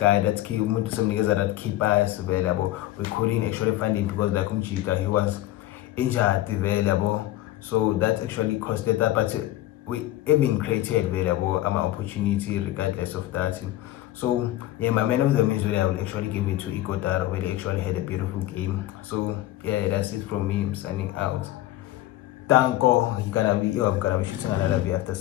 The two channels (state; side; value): quieter; right; 15.0 dB